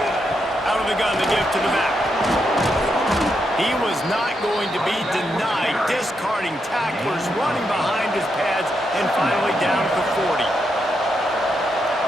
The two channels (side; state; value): both; normal; correlation 0.82